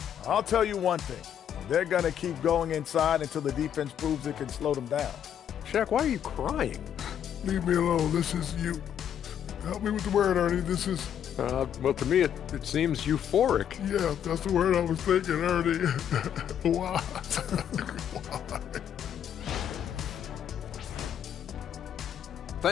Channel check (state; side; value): quieter; right; 9.4 dB